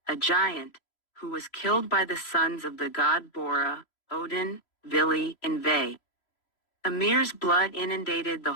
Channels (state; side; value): late; right; 3.0 ms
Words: a giant, who was killed by the sons of the god Bora, Odin, Vili, and Ve. Ymir's blood inundated the